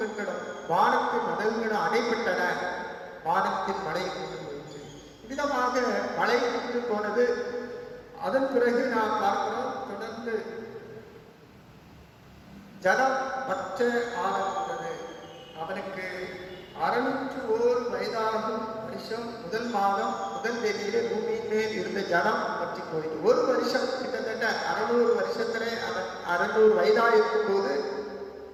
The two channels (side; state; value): both; identical; correlation 1.00